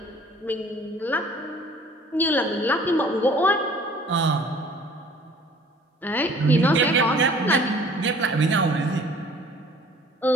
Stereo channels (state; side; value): normal; both; correlation 0.52